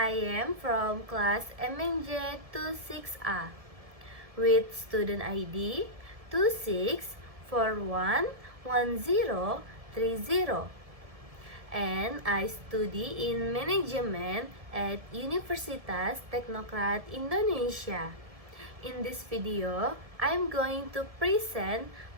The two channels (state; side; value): late; left; 1.7 ms